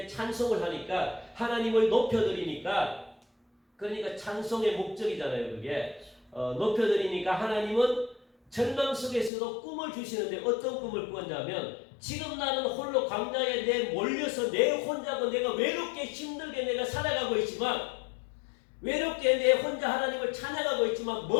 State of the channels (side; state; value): right; drops out; at 9.3 s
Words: 찬송을 하니까 하나님을 높여드리니까 그러니까 찬송의 목적이잖아요. 그게 높여드리니까 하나님은 절망 속에서도 꿈을 주시는데 어떤 꿈을 꿨냐면 지금 나는 홀로 광야에 내 몰려서 내 혼자고 내가 외롭게 힘들게 내가 살아가고 있지만 외롭게 내 혼자 하나님을 찬양하고 있지만